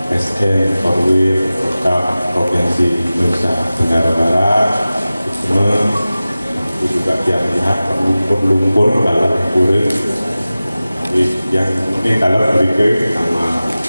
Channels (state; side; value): inverted; both; correlation -0.96